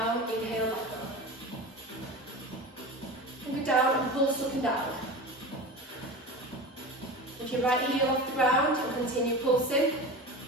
move down and pulse up and down. Lift your right heel off the ground and continue pulsing.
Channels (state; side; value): normal; both; correlation 0.30